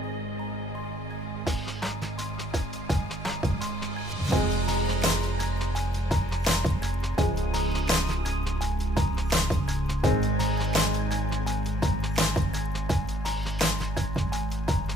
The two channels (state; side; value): normal; both; correlation 0.67